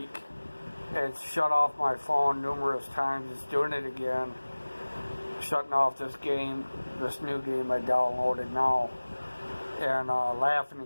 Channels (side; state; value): both; inverted; correlation -1.00